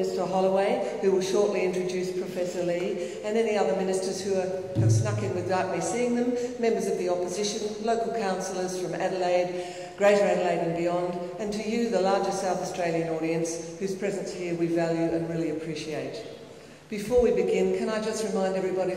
Holloway, who will shortly introduce Professor Lee, and any other ministers who have snuck in without me seeing them, members of the opposition, local councillors from Adelaide, Greater Adelaide and beyond, and to you, the larger South Australian audience, whose presence here we value and really appreciate. Before we begin, can I just remind everybody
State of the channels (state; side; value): identical; both; correlation 1.00